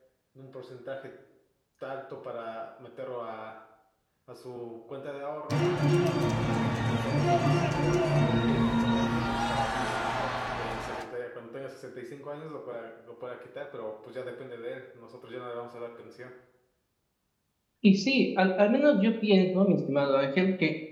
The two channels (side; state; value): both; identical; correlation 1.00